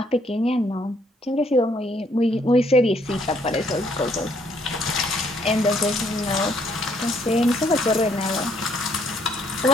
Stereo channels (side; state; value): both; normal; correlation 0.68